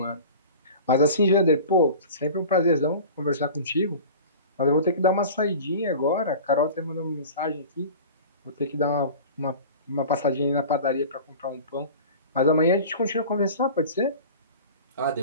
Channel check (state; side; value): inverted; both; correlation -0.38